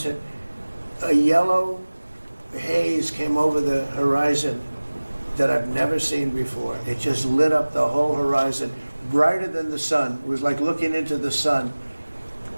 hit, a yellow haze came over the horizon that I've never seen before. It just lit up the whole horizon, brighter than the sun. It was like looking into the sun.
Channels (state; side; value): inverted; both; correlation -1.00